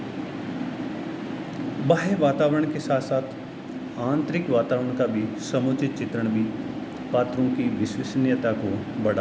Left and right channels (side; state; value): both; identical; correlation 1.00